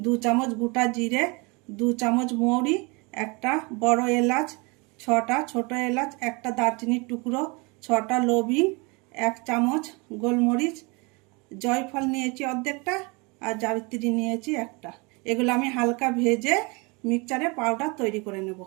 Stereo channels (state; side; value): quieter; left; 28.6 dB